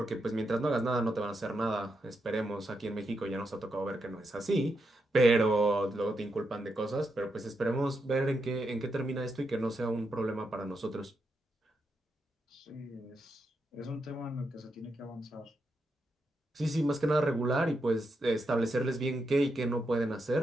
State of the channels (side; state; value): both; normal; correlation 0.83